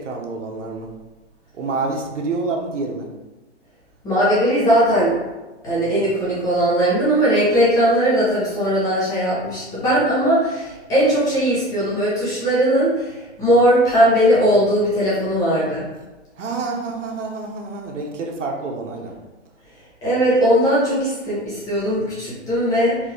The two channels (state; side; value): normal; both; correlation 0.39